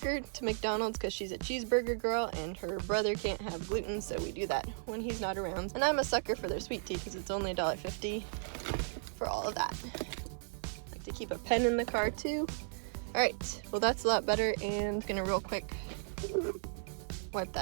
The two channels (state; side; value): silent; left; 54 dB below the other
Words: her to McDonald's because she's a cheeseburger girl and her brother can't have gluten, so we do that when he's not around. And I'm a sucker for their sweet tea because it's only $1.50 for all of that. I like to keep a pen in the car too. Alright, well that's a lot better, and I'm gonna real quick wipe